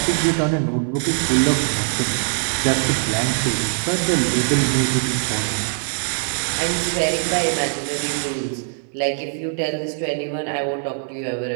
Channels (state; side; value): silent; left; digital silence